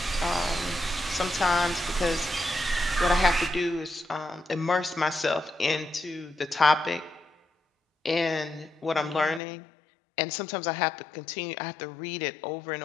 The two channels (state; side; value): drops out; right; at 9.4 s